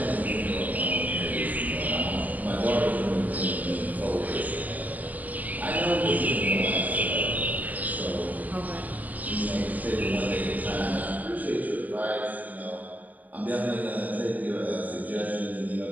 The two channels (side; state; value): left; late; 0.079 ms